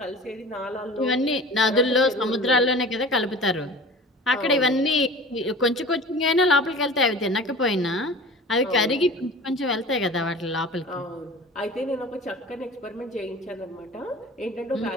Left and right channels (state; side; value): normal; both; correlation 0.39